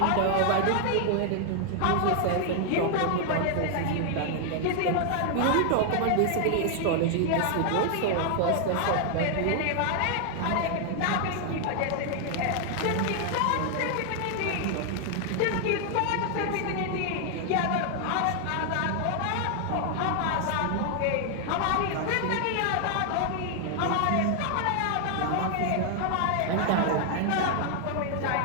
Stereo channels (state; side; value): different; both; correlation 0.00